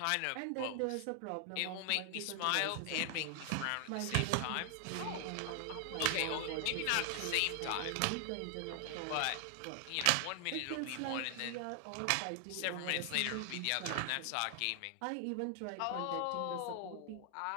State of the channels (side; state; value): both; different; correlation 0.00